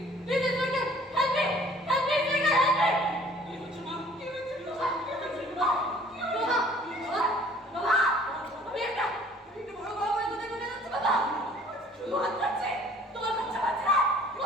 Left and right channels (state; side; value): normal; both; correlation 0.53